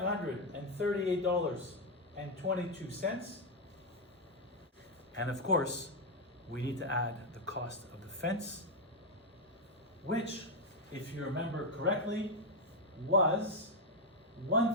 And of course, we need to add the cost of the fence, which, if you remember correctly, was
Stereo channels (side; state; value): both; normal; correlation 0.03